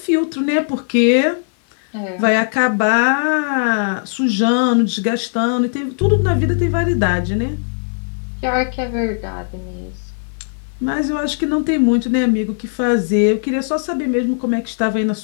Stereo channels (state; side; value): silent; right; 59 dB below the other